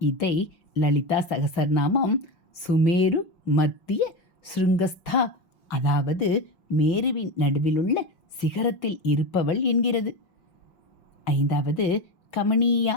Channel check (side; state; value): right; late; 5.7 ms